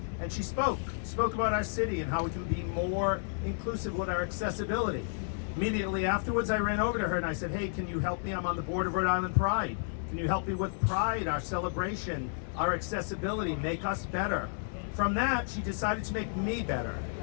and she spoke about our city and how we can be more inclusive with our accessibility. Immediately afterwards, I ran over to her and I said, hey, can you help me? I'm on the board of Rhode Island Pride. Can you help me with Pride, our celebration, our accessibility, make us better? From that, she decided to make me better.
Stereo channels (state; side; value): silent; right; digital silence